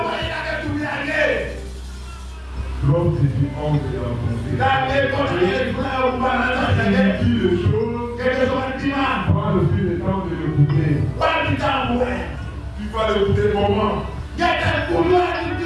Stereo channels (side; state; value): both; identical; correlation 1.00